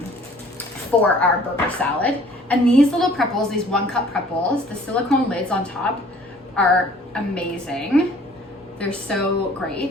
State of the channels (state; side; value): normal; both; correlation 0.53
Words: for our burger salad. And these little prep bowls, these 1 cup prep bowls, the silicone lids on top are amazing. They're so